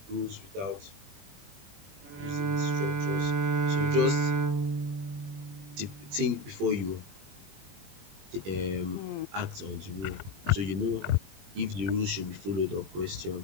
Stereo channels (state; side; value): late; left; 21 ms